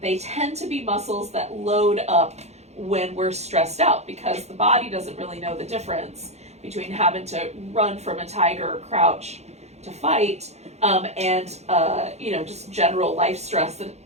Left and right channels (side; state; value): left; late; 0.32 ms